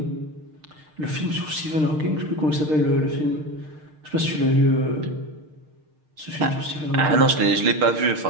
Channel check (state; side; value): late; left; 6.5 ms